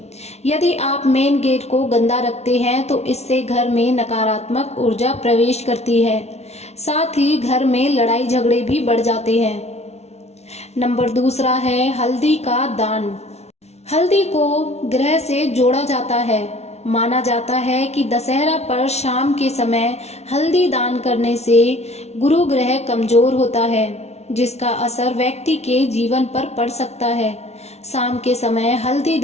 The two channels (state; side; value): late; right; 0.31 ms